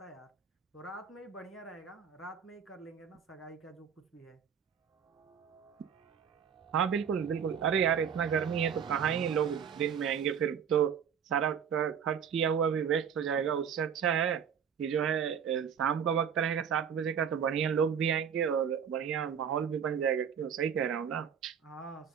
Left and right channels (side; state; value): left; quieter; 7.7 dB